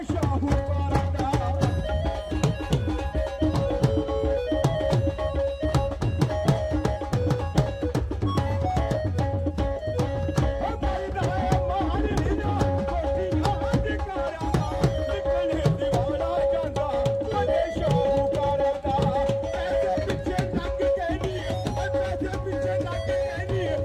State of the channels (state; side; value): identical; both; correlation 1.00